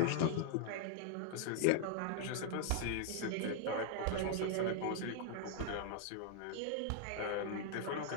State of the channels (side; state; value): both; different; correlation 0.00